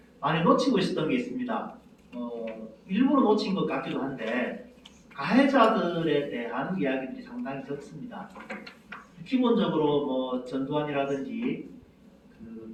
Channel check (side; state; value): both; identical; correlation 1.00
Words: 많이 놓치고 있었던 게 있습니다. 일부러 놓친 것 같기도 한데 가해자들에 대한 이야기들이 상당히 적습니다. 기본적으로 뭐 전두환이라든지